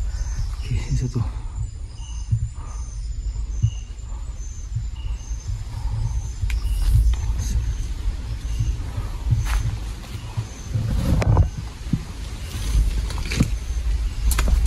Okey, ini satu.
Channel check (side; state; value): both; identical; correlation 1.00